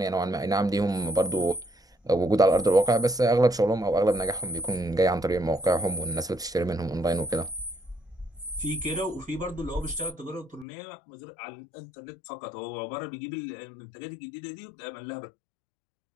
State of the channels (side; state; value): right; drops out; at 10.7 s